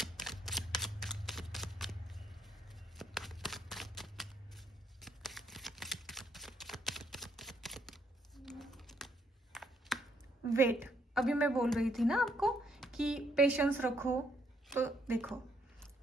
वेट, अभी मैं बोल रही थी ना आपको कि पेशेंस रखो, तो देखो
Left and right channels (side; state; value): both; normal; correlation 0.72